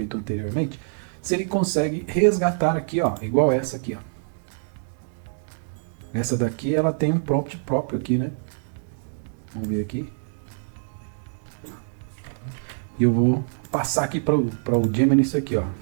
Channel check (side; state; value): left; silent; digital silence